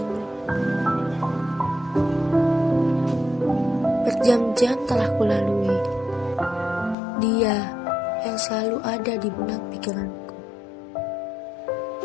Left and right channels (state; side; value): drops out; right; at 7.0 s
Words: Berjam-jam telah kulalui. Dia yang selalu ada di benak pikiranku.